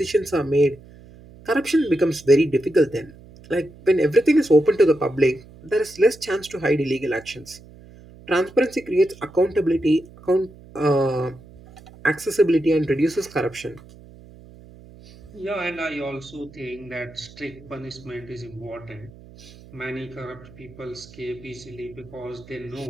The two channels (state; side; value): noise; right; hum, 21 dB below the sound